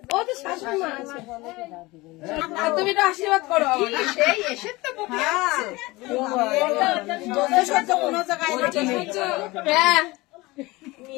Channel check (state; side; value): quieter; right; 21.7 dB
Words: ও তো শাশুড়ি মা আছে। আর তুমি তো আশীর্বাদ করো আমার। সেই এসে তো বকে আছে। সহ্য কোনো জায়গায় হ্যাঁ,